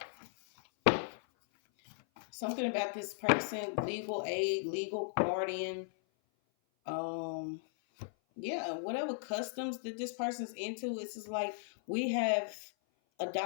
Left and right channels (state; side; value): silent; right; 53 dB below the other